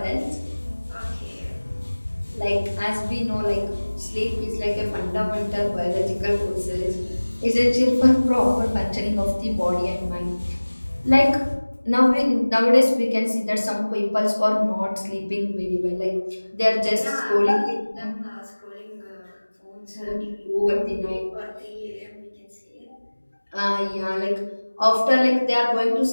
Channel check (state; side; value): inverted; both; correlation -1.00